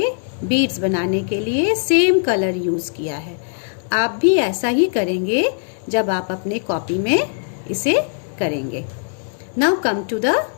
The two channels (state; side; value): silent; right; digital silence